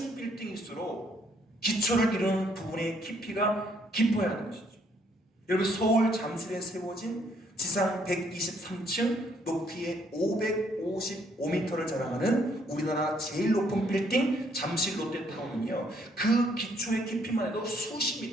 빌딩일수록 기초를 이루는 부분의 깊이가 깊어야 하는 것이죠. 여러분 서울 잠실에 세워진 지상 123층 높이에 555m를 자랑하는 우리나라 제일 높은 빌딩 잠실 롯데타운은요 그 기초의 깊이만 해도 수십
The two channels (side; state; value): both; normal; correlation 0.68